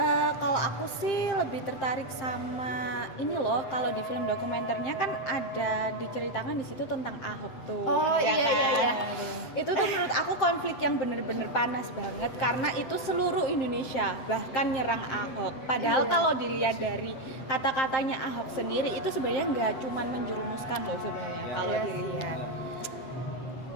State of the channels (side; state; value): right; late; 7.6 ms